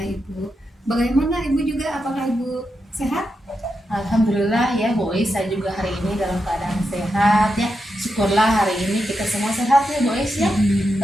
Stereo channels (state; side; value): normal; both; correlation 0.86